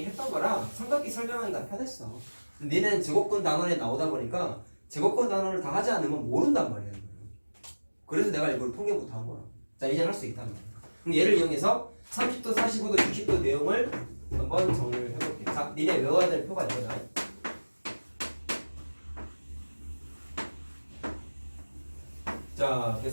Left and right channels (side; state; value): both; inverted; correlation -1.00